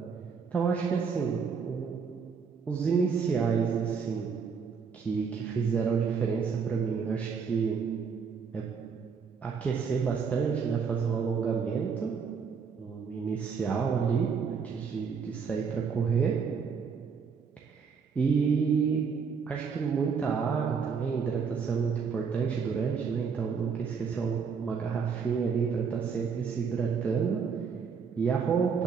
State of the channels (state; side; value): quieter; left; 6.0 dB